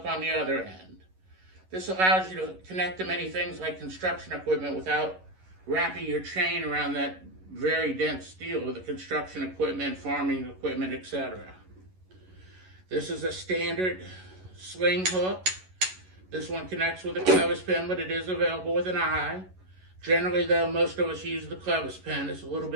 on the other end. This allows you to connect to many things like construction equipment without wrapping your chain around that very dense steel of the construction equipment, farming equipment, etc. This is a standard sling hook. This one connects with a clevis pin, but it is available with an eye. Generally though, most of us use the clevis pin. It's a little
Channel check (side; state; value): left; late; 11 ms